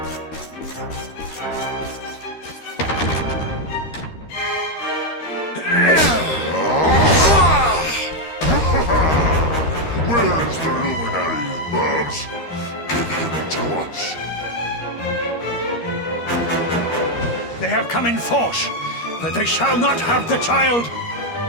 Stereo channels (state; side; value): late; right; 13 ms